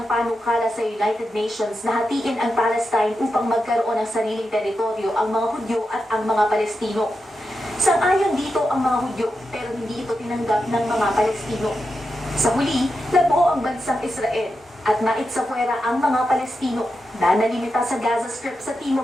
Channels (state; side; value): normal; both; correlation 0.88